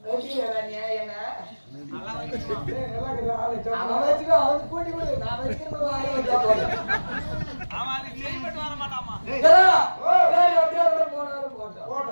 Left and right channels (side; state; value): both; inverted; correlation -1.00